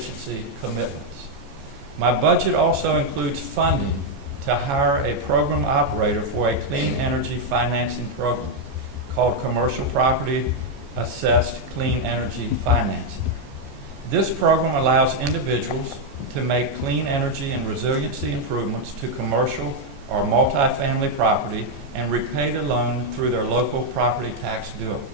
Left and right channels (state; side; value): late; left; 14 ms